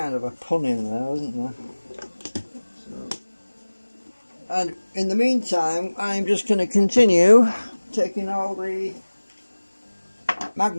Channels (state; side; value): inverted; both; correlation -1.00